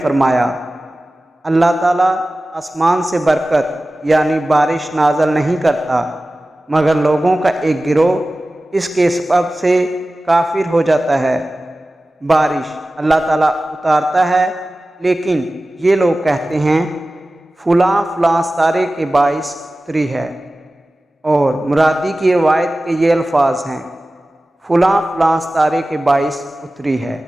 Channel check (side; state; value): both; normal; correlation 0.96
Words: فرمایا، اللہ تعالیٰ آسمان سے برکت یعنی بارش نازل نہیں کرتا مگر لوگوں کا ایک گروہ اس کے سبب سے کافر ہو جاتا ہے۔ بارش اللہ تعالیٰ اتارتا ہے لیکن یہ لوگ کہتے ہیں فلاں فلاں ستارے کے باعث اتری ہے، اور مرادی کی روایت کے یہ الفاظ ہیں، فلاں فلاں ستارے کے باعث اتری ہے۔